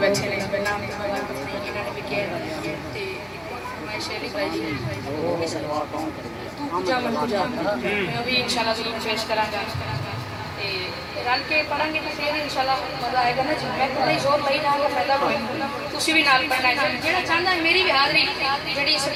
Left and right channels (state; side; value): identical; both; correlation 1.00